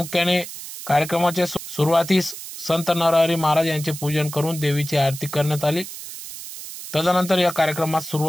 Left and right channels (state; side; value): noise; right; hiss, 11 dB below the sound